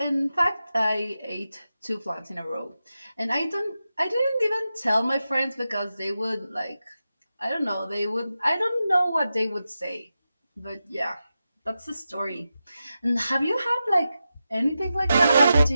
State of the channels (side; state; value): both; inverted; correlation -0.91